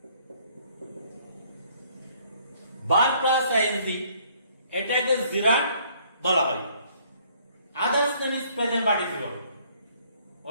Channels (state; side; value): inverted; both; correlation -0.62